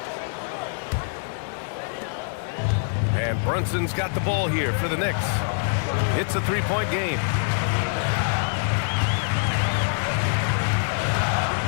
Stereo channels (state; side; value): silent; right; digital silence